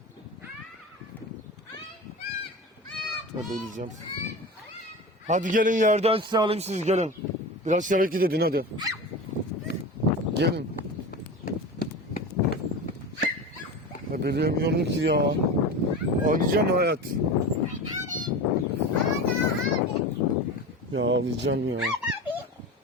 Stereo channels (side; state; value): both; normal; correlation 0.29